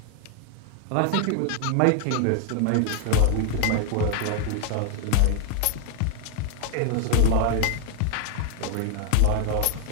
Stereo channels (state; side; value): different; both; correlation 0.00